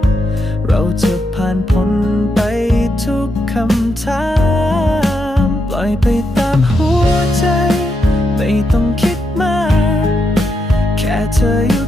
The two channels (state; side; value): normal; both; correlation 0.82